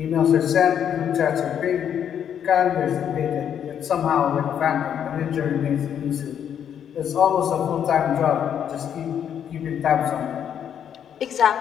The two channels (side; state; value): right; quieter; 8.9 dB